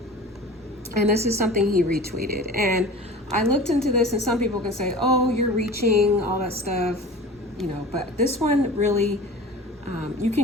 And this is something he retweeted. And I looked into this, and some people can say, oh, you're reaching, all that stuff, but this one really, you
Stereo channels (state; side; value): normal; both; correlation 0.38